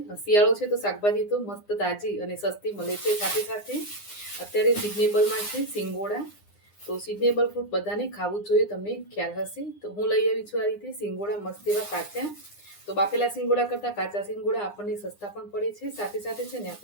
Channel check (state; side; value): late; right; 9.8 ms